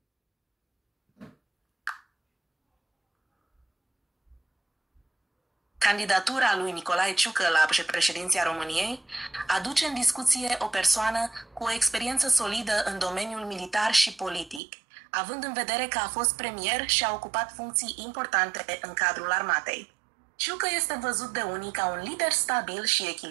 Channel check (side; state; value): left; drops out; at 14.6 s